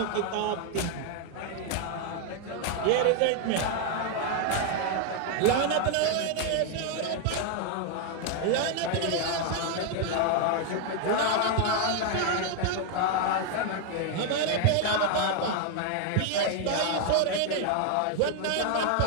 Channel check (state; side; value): different; both; correlation 0.01